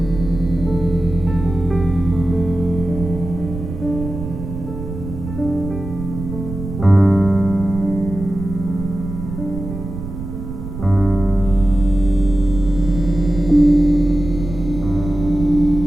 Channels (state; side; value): noise; right; rumble, 8 dB below the sound